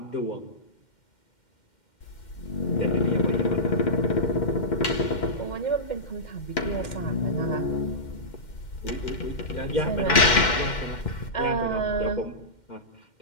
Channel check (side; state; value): right; late; 2.1 ms